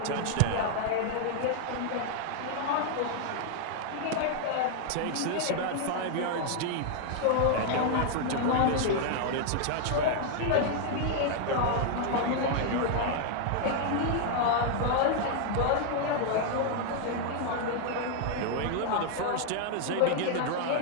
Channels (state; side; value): different; both; correlation 0.00